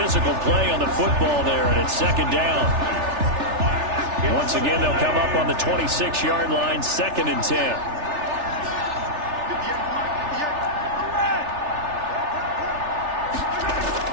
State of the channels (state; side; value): late; left; 3.4 ms